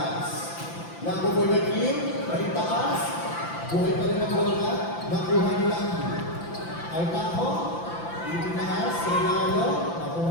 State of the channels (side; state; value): right; late; 5.9 ms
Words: Lago for the kill. May taas. Buhay pa rin ang bola. Nakuha nila. Altaho. Itinaas. Regalo.